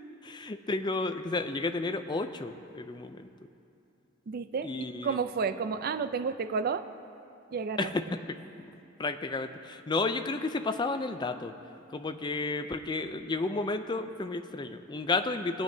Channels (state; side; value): normal; both; correlation 0.23